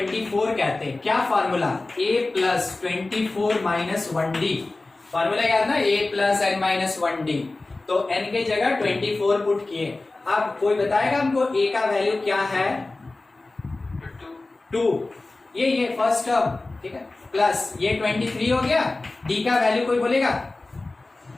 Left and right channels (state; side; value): quieter; right; 3.2 dB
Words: कहते हैं। क्या formula, a plus 24 minus 1d, formula याद ना, a plus n minus 1d। तो n के जगह 24 पुट किए। अब कोई बताएगा हमको a का वैल्यू क्या है, 2, ये फर्स्ट टर्म। ठीक है, प्लस ये 23 हो गया, d का वैल्यू कोई बोलेगा